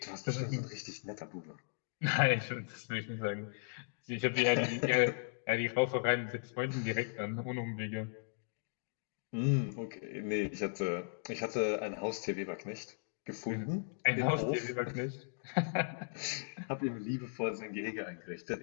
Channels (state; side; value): silent; right; digital silence